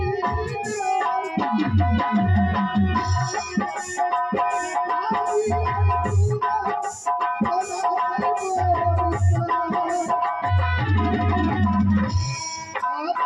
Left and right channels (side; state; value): both; identical; correlation 1.00